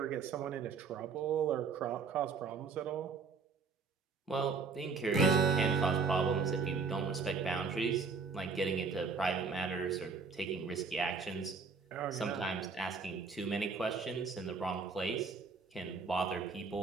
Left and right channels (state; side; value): quieter; left; 4.8 dB